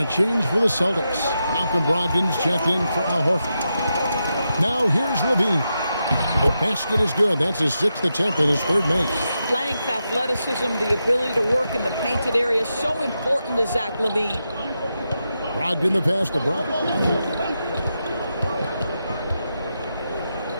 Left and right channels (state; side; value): inverted; both; correlation -0.87